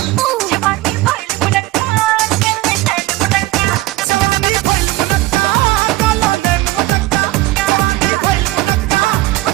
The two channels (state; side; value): quieter; left; 18.1 dB